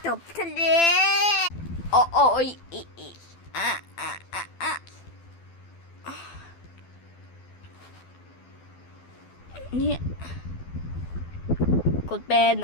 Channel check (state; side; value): late; right; 12 ms